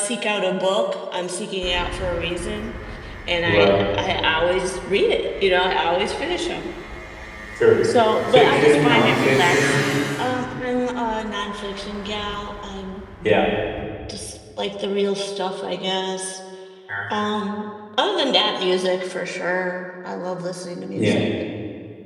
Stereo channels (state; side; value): identical; both; correlation 1.00